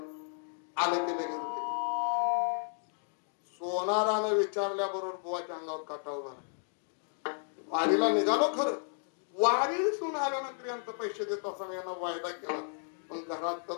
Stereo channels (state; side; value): silent; right; 56 dB below the other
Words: आलं की लगेच होते. सोनारानं विचारल्याबरोबर बुवाच्या अंगावर काटा उभा राहिला. वारीला निघालो खरं, वारीसून आल्यानंतर यांचं पैसे देत असताना यांना वायदा केला, पण घरात तर